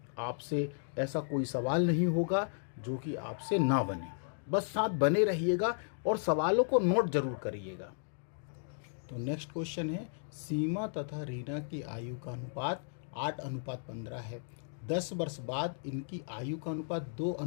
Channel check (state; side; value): silent; right; digital silence